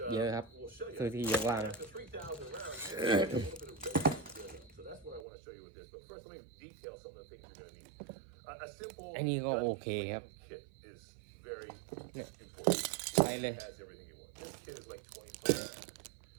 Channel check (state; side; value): drops out; left; at 5.2 s